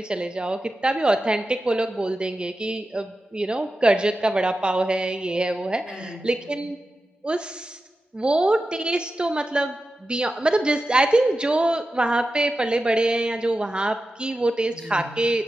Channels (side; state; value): both; normal; correlation 0.92